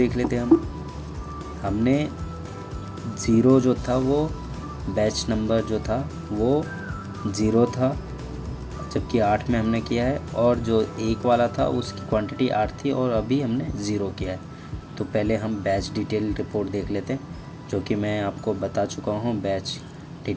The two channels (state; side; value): identical; both; correlation 1.00